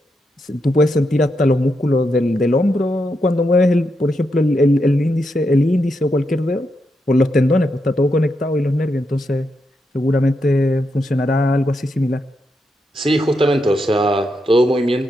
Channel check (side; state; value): both; normal; correlation 0.83